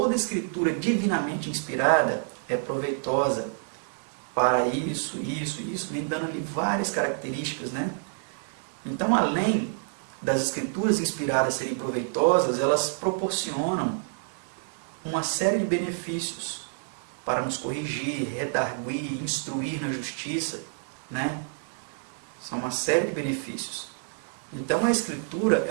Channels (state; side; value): silent; left; 59 dB below the other